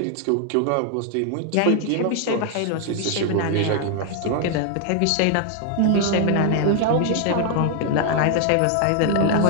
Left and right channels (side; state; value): both; different; correlation 0.00